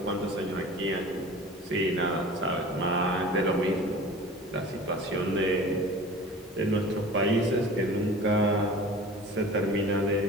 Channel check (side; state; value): both; normal; correlation 0.40